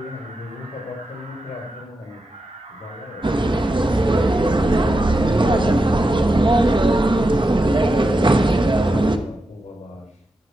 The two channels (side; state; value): both; normal; correlation 0.87